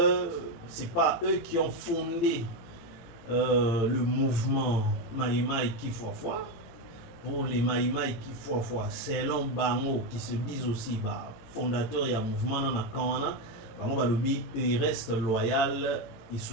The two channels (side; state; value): right; late; 18 ms